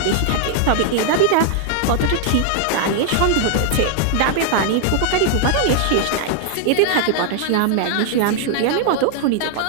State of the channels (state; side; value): different; both; correlation 0.00